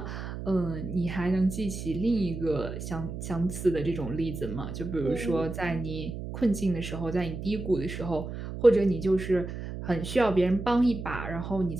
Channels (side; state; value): right; noise; hum, 7 dB below the sound